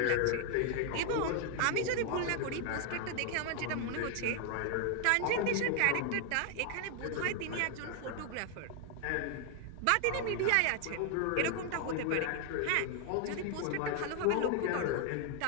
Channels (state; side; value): different; both; correlation 0.00